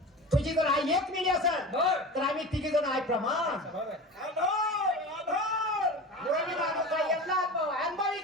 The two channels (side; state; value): both; normal; correlation 0.32